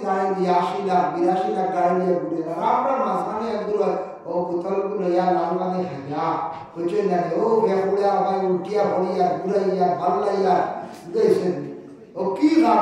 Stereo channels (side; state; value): both; identical; correlation 1.00